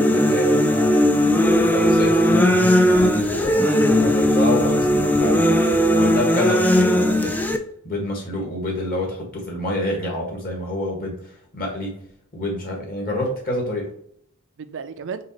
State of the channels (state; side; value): normal; both; correlation 0.74